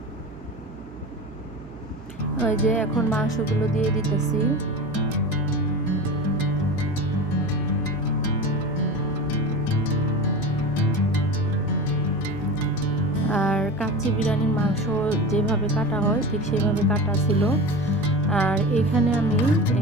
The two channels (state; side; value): noise; right; hum, 18 dB below the sound